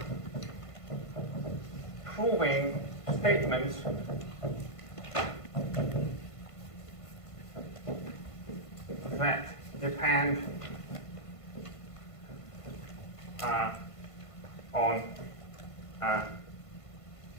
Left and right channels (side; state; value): right; late; 1.5 ms